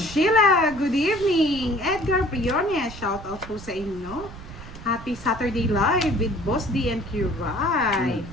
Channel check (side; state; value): right; noise; rumble, 14 dB below the sound